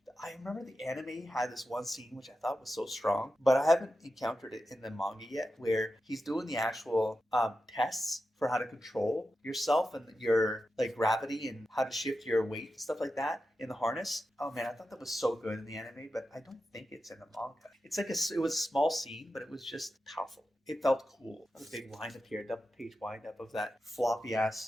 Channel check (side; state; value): both; normal; correlation 0.90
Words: I remember the anime had this one scene which I thought was so strong, but I haven't encountered it in the manga yet, where he's doing the actual tests for how to control yourself and your like gravity and how to shift your weight and stuff like that in the harness. Oh man, I thought that was so good in the anime, but I don't think it's in the manga. It's like it was a small scene, but it was just powerful. It felt cool. A big wind up here, double page wind up of that floppy